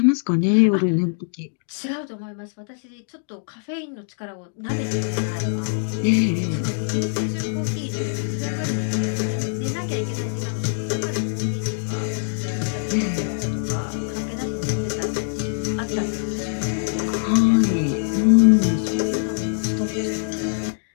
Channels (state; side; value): silent; right; digital silence